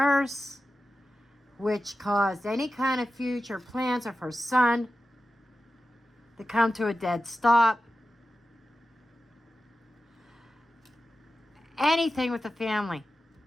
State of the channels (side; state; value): both; normal; correlation 0.93